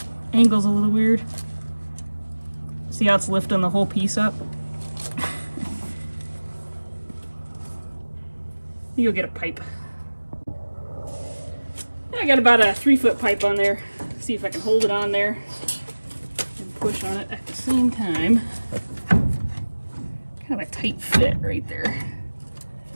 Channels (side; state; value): both; inverted; correlation -1.00